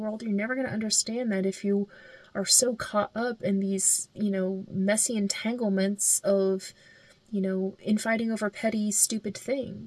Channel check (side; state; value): both; identical; correlation 1.00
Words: You're never going to understand that if you are so caught up in these, messy entanglements of, infighting over petty, stupid